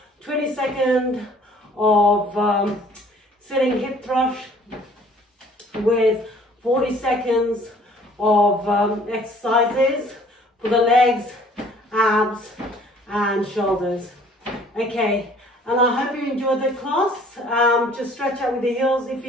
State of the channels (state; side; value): normal; both; correlation 0.55